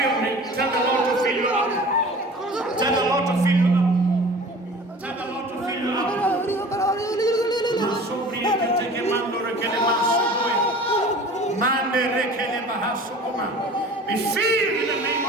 me. Tell the Lord to fill you up. Tell the Lord to fill you up. Tell the Lord to fill you up. Be filled in the name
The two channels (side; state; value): both; normal; correlation 0.42